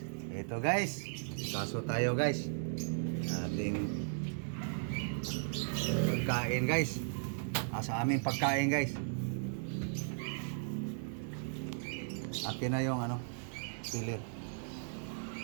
Ito guys, kaso tayo guys. Ating pagkain guys. Sa aming pagkain guys. Atin na yung pilir.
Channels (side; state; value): left; silent; 54 dB below the other